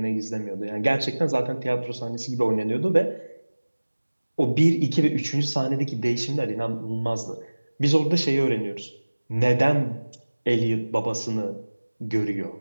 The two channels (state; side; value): inverted; both; correlation -1.00